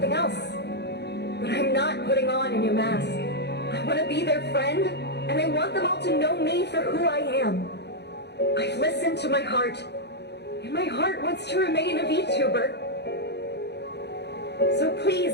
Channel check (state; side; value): late; right; 0.49 ms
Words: else. But I'm not putting on a new mask. I want to be their friend, and I want them all to know me for who I am. I've listened to my heart, and my heart wants to remain a VTuber. So